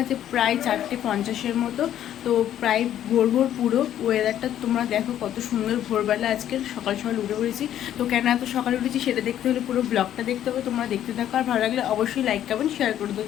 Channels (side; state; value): right; quieter; 11.2 dB